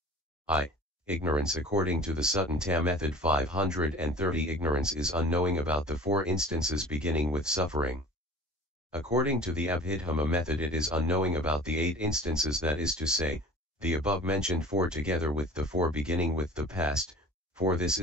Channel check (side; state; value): both; normal; correlation 0.42